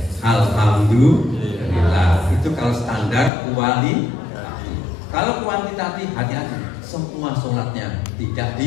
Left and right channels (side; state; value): right; drops out; at 3.3 s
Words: Alhamdulillah. Itu kalau standar kualitatif. Kalau kuantitatif hati-hati, semua sholatnya tidak